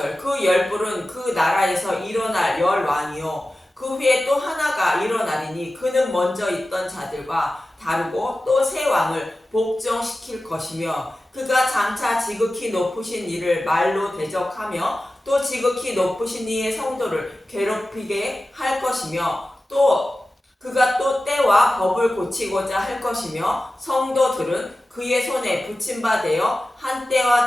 그 10뿔은 그 나라에서 일어날 열왕이요 그 후에 또 하나가 일어나리니 그는 먼저 있던 자들과 다르고 또 새 왕을 복종시킬 것이며 그가 장차 지극히 높으신 이를 말로 대적하며 또 지극히 높으신 이의 성도를 괴롭히게 할 것이며 또 그가 또 때와 법을 고치고자 할 것이며 성도들은 그의 손에 붙임바 되어 한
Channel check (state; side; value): normal; both; correlation 0.95